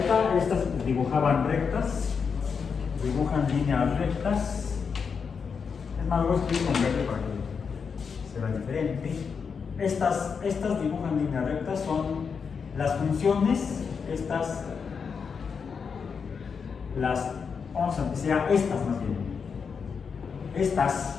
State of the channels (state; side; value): quieter; right; 6.0 dB